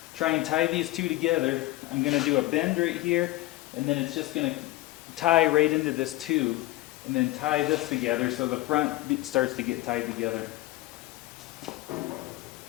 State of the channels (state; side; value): quieter; right; 18.0 dB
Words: try and tie these two together. I'm going to do a bend right here, and then it's just going to tie right into this tube, and then tie this together so the front starts to get tied together.